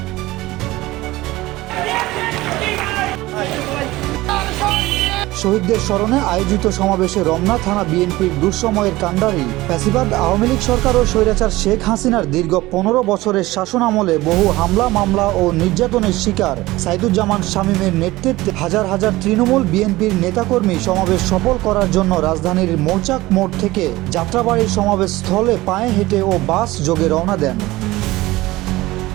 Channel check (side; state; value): left; quieter; 18.8 dB